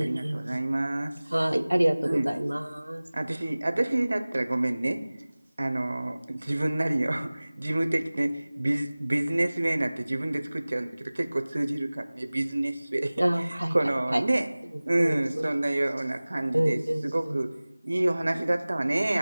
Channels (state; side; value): inverted; both; correlation -0.99